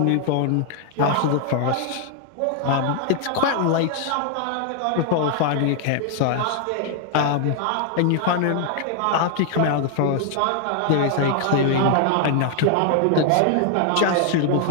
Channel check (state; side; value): different; both; correlation 0.00